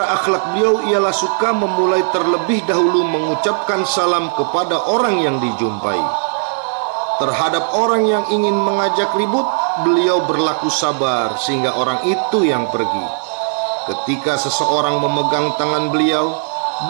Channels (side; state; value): left; silent; 63 dB below the other